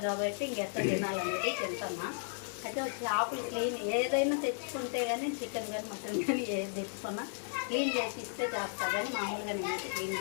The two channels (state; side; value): silent; right; digital silence